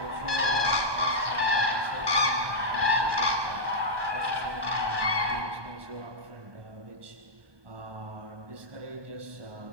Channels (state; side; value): late; left; 1.2 ms